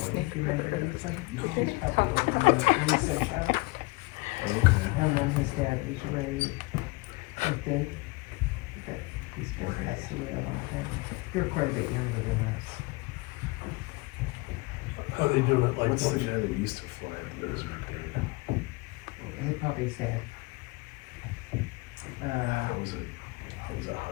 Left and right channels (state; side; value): quieter; right; 24.1 dB